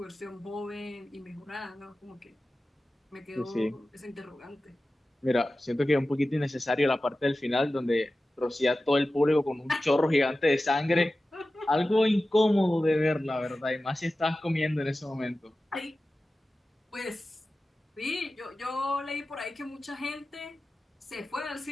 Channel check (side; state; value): both; normal; correlation 0.95